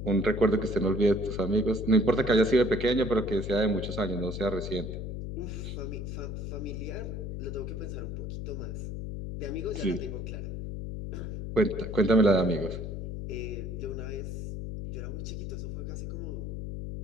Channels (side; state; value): left; noise; hum, 5 dB below the sound